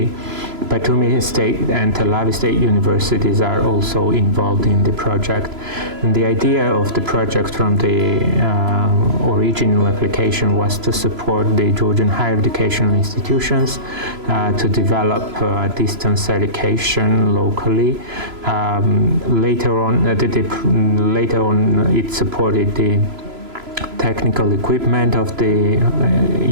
Batumi State and Tel Aviv State Universities are also involved in the project. And the idea of the project from the original application was to support the Georgian higher educational institutions to develop distance education locally. Later on, it supported the technical equipment of the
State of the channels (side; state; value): left; late; 3.0 ms